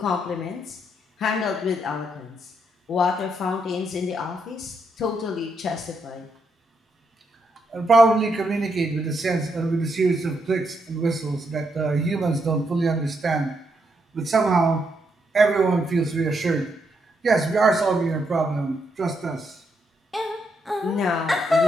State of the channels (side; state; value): both; normal; correlation 0.79